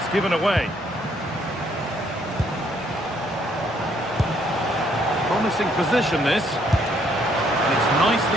given away. Promising position, this. And it's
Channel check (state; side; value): normal; both; correlation 0.68